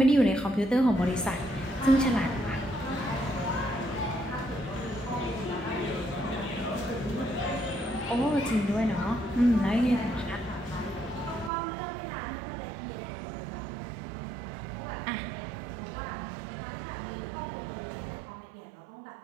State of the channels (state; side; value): drops out; left; at 11.5 s